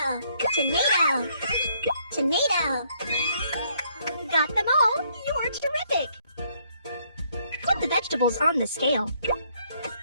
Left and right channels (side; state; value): both; inverted; correlation -0.69